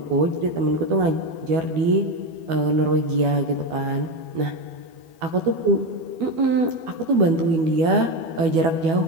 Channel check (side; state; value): left; late; 12 ms